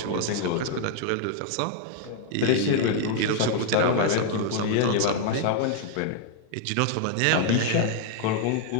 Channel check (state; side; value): different; both; correlation 0.00